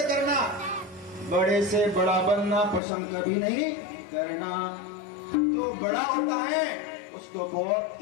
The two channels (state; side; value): drops out; right; at 2.8 s